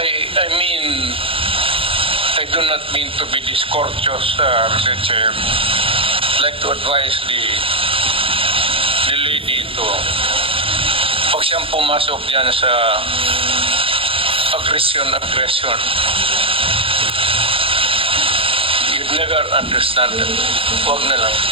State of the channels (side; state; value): left; late; 0.27 ms